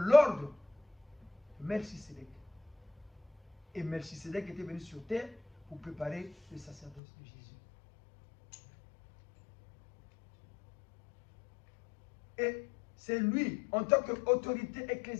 de Melchisédek. Et Melchisédek était venu sur terre pour préparer le sacerdoce de Jésus. Et c'est lui, en tant qu'autorité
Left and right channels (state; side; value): drops out; right; at 7.0 s